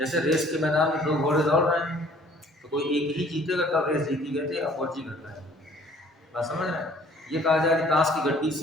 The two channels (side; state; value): both; normal; correlation 0.56